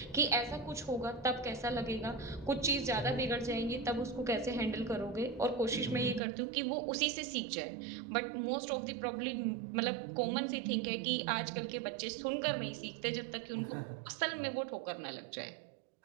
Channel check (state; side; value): drops out; left; at 6.2 s